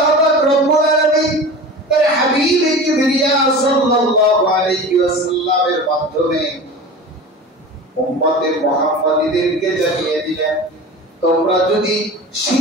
পাক রব্বুল আলামিন তার হাবিব কিবরিয়া সাল্লাল্লাহু আলাইহি ওয়াসাল্লামের মাধ্যমে উম্মতে মুহাম্মাদীদেরকে জানিয়ে দিলেন, তোমরা যদি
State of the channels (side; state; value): both; normal; correlation 0.34